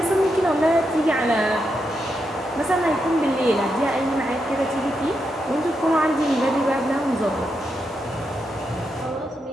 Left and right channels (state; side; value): normal; both; correlation 0.84